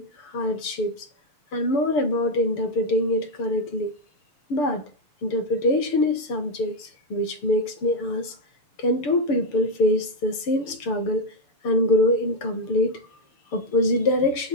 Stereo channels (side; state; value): right; late; 6.9 ms